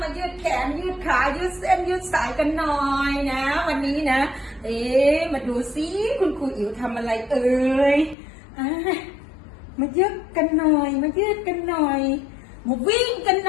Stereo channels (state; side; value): drops out; right; at 8.2 s